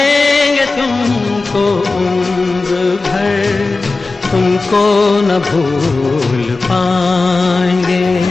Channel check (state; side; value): quieter; right; 3.7 dB